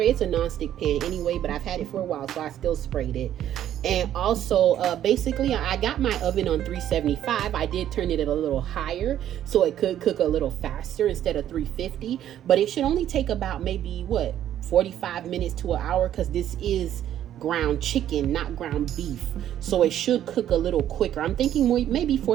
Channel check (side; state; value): left; quieter; 11.2 dB